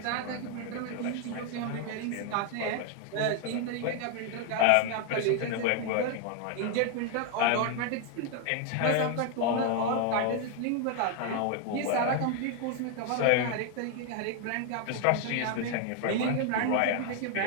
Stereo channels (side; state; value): both; different; correlation 0.01